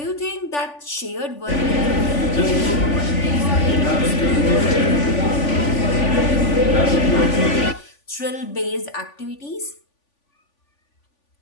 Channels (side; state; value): right; late; 3.5 ms